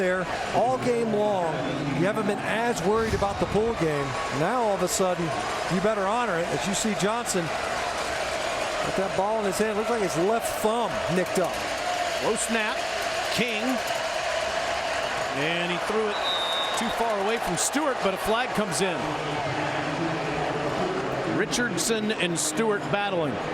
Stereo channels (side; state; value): both; identical; correlation 1.00